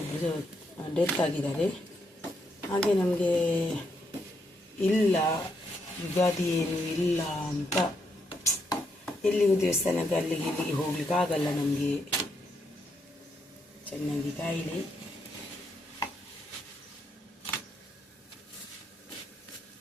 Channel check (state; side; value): normal; both; correlation 0.78